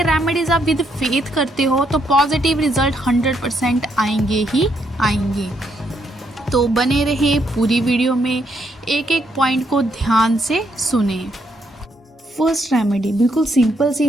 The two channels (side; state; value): both; normal; correlation 0.75